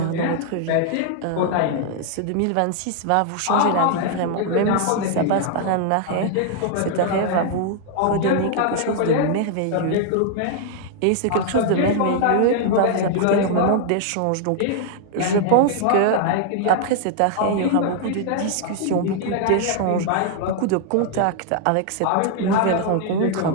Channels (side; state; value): both; different; correlation 0.00